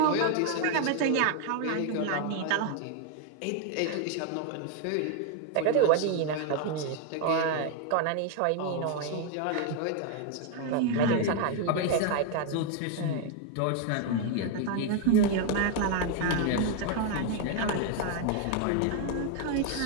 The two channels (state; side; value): different; both; correlation 0.01